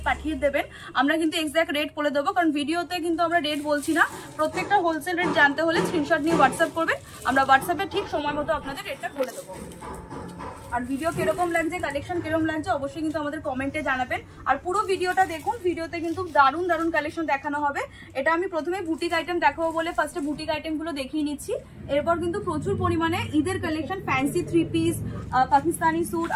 পাঠিয়ে দেবেন। আমরা কিন্তু এক্সাক্ট রেট বলে দেবো, কারণ ভিডিওতে কিন্তু আমরা রেট বলছি না। প্রত্যেকটা হোলসেল রেট জানতে হলে স্ক্রিনশট নিয়ে হোয়াটসঅ্যাপ করবেন, আমরা হোয়াটসঅ্যাপে ঠিক সময় মতো আপনাদের রেটটা বলে দেবো। আর ভিডিও কিরকম লাগছে, কালেকশন কিরকম লাগছে অবশ্যই কিন্তু আমাদের কমেন্টে জানাবেন। আর পুরো ভিডিওটা দেখুন, ভিডিওতে কিন্তু দারুণ দারুণ কালেকশন দেখানো হবে। এটা আমি প্রথমে বুটিক আইটেম দেখাবো বলে ফার্স্টে বুটিক আইটেমগুলো দেখিয়ে নিচ্ছি। এরপর কিন্তু প্রচুর পরিমাণে ঈদের collection, fancy 3 piece, Pakistani suit,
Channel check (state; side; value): identical; both; correlation 1.00